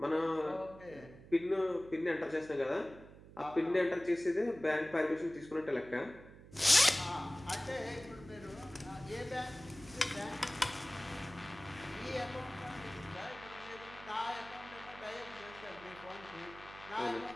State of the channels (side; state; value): right; noise; hum, 18 dB below the sound